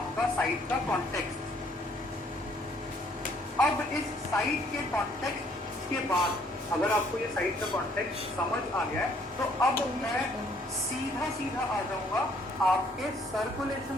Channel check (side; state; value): both; normal; correlation 0.63